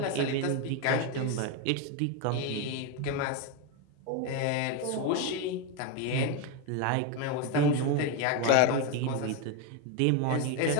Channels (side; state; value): both; different; correlation 0.02